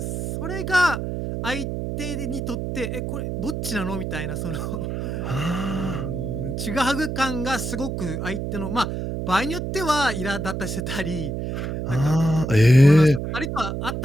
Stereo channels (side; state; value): right; noise; hum, 3 dB below the sound